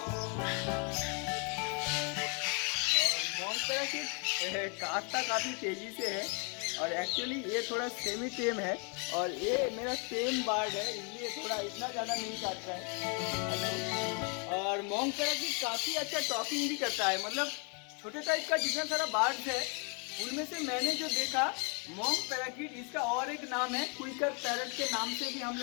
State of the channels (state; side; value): quieter; right; 36.7 dB